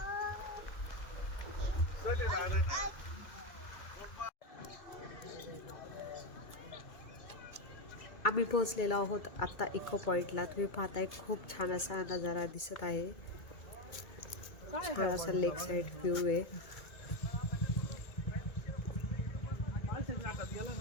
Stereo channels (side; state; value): right; late; 2.3 ms